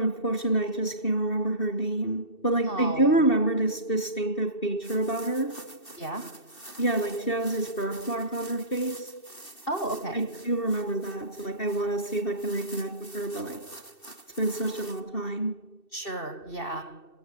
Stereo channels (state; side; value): late; right; 2.7 ms